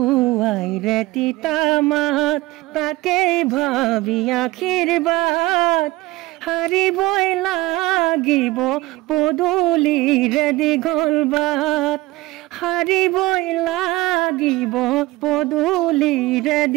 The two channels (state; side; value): quieter; left; 19.7 dB